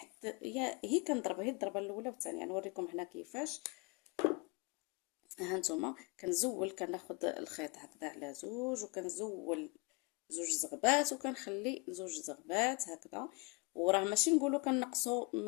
هي كنضربها هي الضربه الاولى والثانيه. نوريكم هنا كيفاش. ها نتوما كنزول، كناخذ الخيط هكذا على زوج وكنزول زوج زغبات وكنخلي زوج زغبات هكذا. وراه ماشي نقولوا كنقصوا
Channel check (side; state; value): right; quieter; 28.2 dB